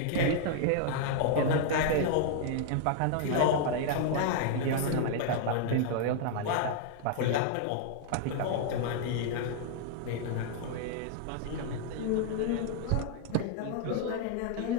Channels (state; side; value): different; both; correlation 0.00